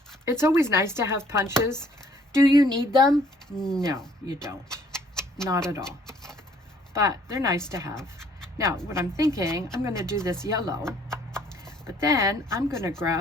It's always nice to have punches. Do you need them? No, you don't. Not at all. But they're nice to have. Now, what I'm thinking, I'm going to do this yellow, but then I'm going to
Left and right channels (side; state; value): both; normal; correlation 0.61